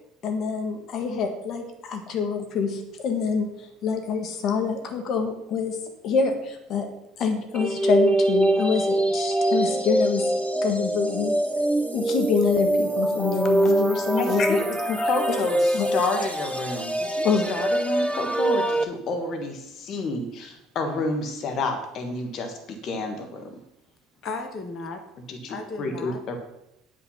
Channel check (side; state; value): both; normal; correlation 0.72